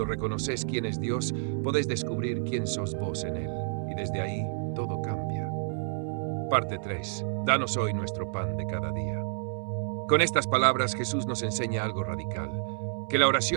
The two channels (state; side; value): silent; left; 58 dB below the other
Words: reconoces quién es Dios, podés descubrir quién sos vos en Él, y desde ahí todo cambia. Parte 3. Danos hoy nuestro pan de cada día. Con estas palabras Jesús nos enseña algo radical, que la